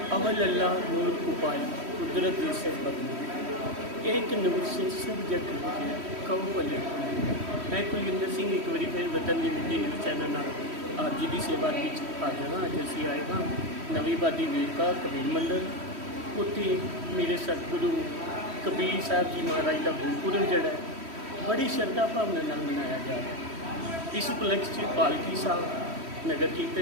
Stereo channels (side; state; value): left; late; 3.1 ms